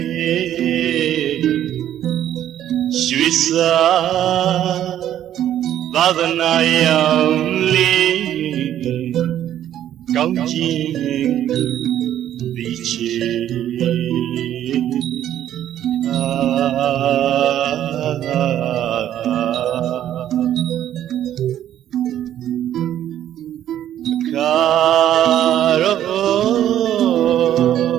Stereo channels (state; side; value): quieter; left; 11.4 dB